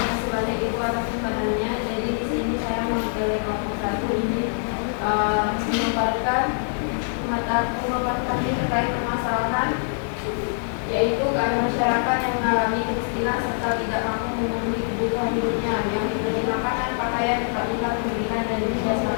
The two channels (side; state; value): right; silent; digital silence